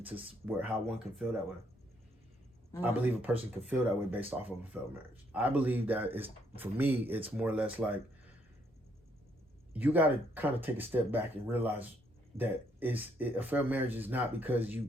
to how one can feel that way. I believe a person can feel that way based off of a failed marriage. I believe that for me, it's more or less like you got to kind of take a step back and realize that a failed marriage is not because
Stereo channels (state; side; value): normal; both; correlation 0.71